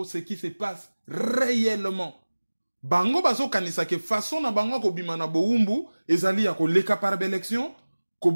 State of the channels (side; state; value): both; inverted; correlation -1.00